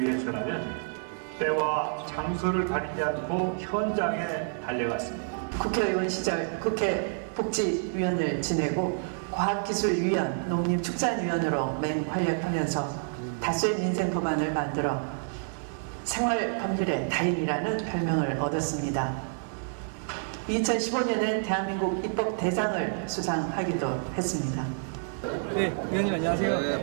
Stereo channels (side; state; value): left; silent; digital silence